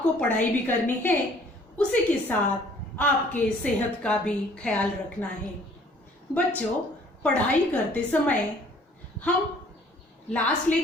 पढ़ाई भी करनी है, उसी के साथ आपके सेहत का भी ख्याल रखना है। बच्चों, पढ़ाई करते समय हम लास्ट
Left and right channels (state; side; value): normal; both; correlation 0.57